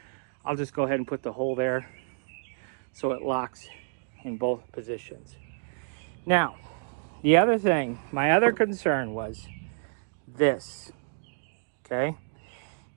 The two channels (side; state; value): left; silent; digital silence